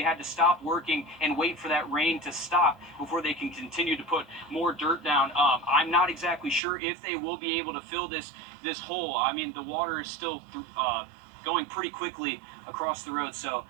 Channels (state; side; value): drops out; left; at 6.6 s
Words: had to stop working and wait for that rain to stop before they can continue to put more dirt down. I'm not exactly sure if they will be able to fill this hole. I mean, the water is still going pretty quickly across the road. So